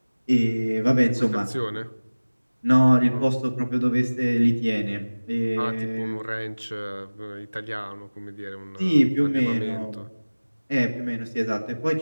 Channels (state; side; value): inverted; both; correlation -1.00